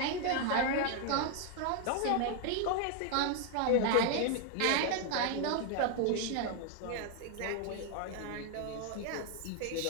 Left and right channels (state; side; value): different; both; correlation 0.01